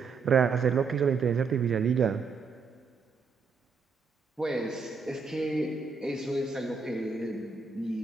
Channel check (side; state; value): left; quieter; 5.0 dB